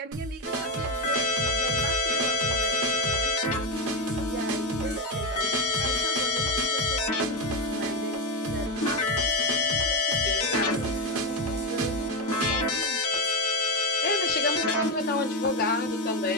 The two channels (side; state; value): both; normal; correlation 0.11